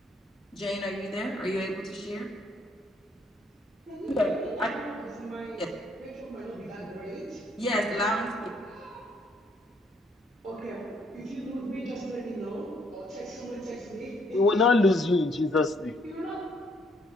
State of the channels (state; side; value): normal; both; correlation 0.68